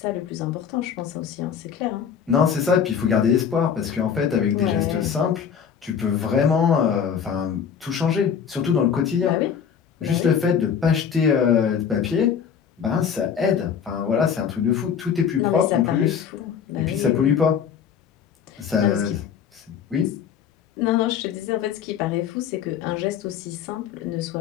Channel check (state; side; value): quieter; right; 7.6 dB